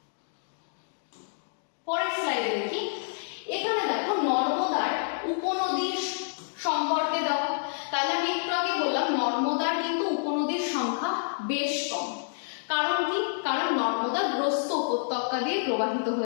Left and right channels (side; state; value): right; silent; digital silence